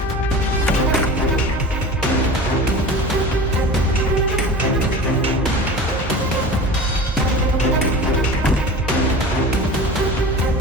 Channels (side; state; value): both; normal; correlation 0.35